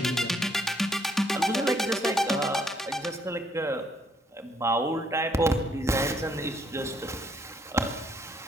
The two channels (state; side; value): normal; both; correlation 0.69